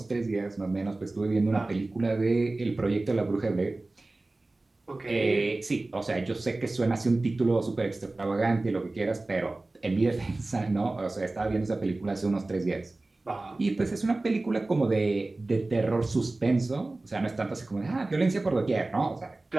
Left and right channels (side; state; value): left; quieter; 3.0 dB